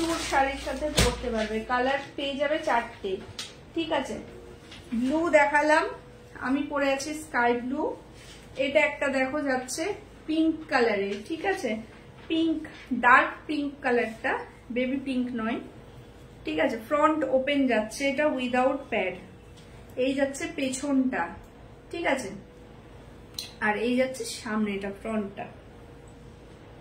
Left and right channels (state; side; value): identical; both; correlation 1.00